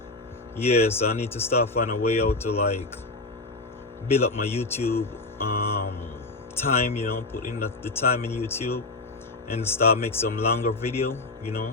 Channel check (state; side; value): quieter; right; 3.2 dB